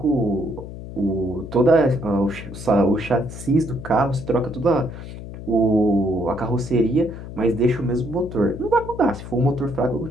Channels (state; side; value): noise; left; hum, 11 dB below the sound